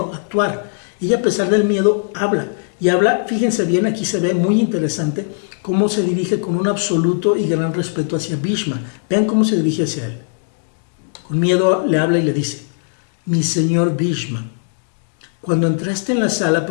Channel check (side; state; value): right; silent; digital silence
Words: actuar. Ella, a pesar del miedo, habla. Y habla, fíjense bien, aquí se ve muy interesante cómo se dirige con un absoluto y gran respeto hacia Bhishma. Vean cómo se dirige hacia él. Con miedo le habla y le dice, mi señor Bhishma, cuando entraste en la sala